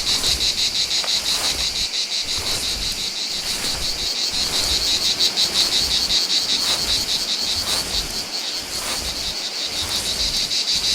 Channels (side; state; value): both; identical; correlation 1.00